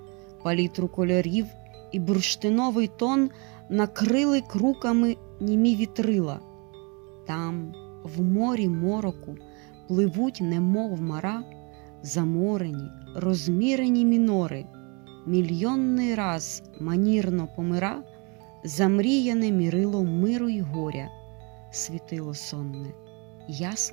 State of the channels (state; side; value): quieter; left; 31.9 dB